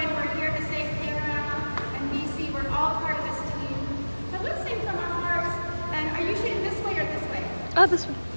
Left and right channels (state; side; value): inverted; both; correlation -1.00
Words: We're here to save Panorama and BC. We're all part of this team. So let's sing from our hearts. And are you shooting this way or this way? Oh, this way.